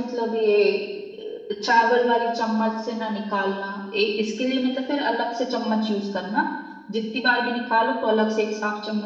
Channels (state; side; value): identical; both; correlation 1.00